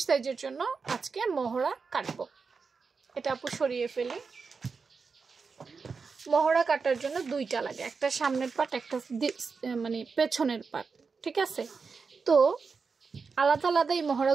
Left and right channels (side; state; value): left; quieter; 5.0 dB